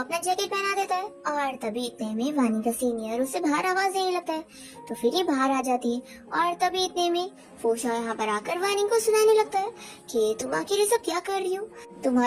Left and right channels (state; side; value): identical; both; correlation 1.00